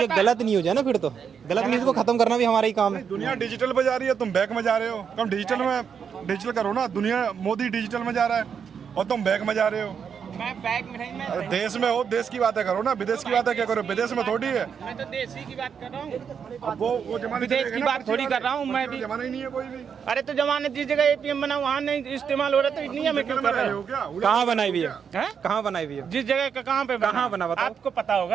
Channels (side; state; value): left; quieter; 7.1 dB